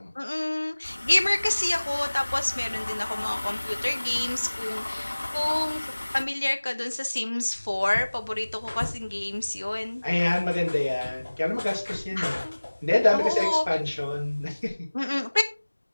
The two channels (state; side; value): inverted; both; correlation -1.00